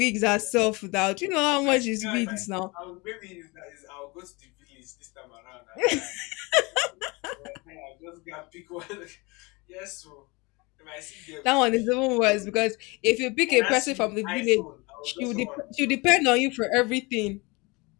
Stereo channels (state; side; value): quieter; right; 26.1 dB